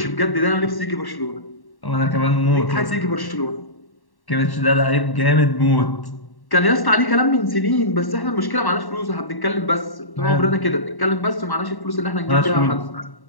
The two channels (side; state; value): right; late; 1.1 ms